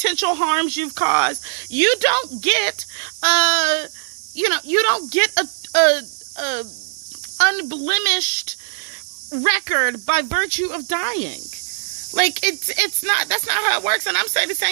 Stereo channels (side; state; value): left; silent; digital silence